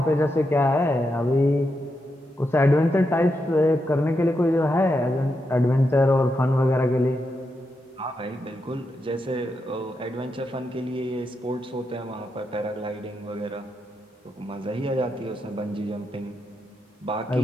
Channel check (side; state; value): both; normal; correlation 0.85